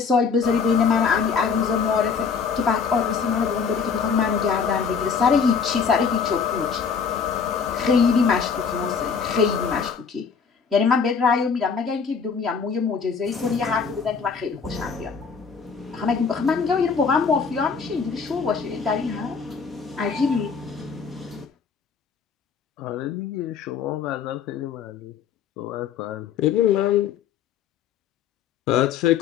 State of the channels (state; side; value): quieter; right; 6.0 dB